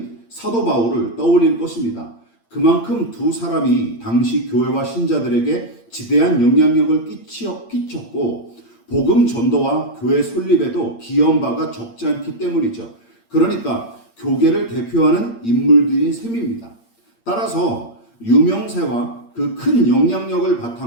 사도 바울을 떠올릴 것입니다. 그만큼 두 사람이 당시 교회와 신자들에게 지대한 영향력을 끼쳤고 복음 전도와 교회 설립에도 기여한 바가 적지 않기 때문이죠. 그러니까 교계를 대표하는 인물들인 셈입니다. 따라서 유명세와 그 큰 영향력을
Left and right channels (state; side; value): late; right; 8.7 ms